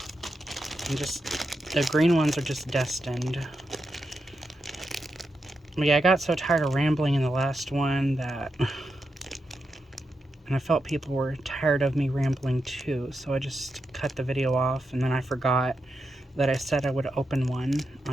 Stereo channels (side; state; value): both; normal; correlation 0.87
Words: And the green ones are just destined. But yeah, I got so tired of rambling in the last one that... and I felt people were tired of me rambling too, so I just cut the video off, and then I forgot that I said I would open one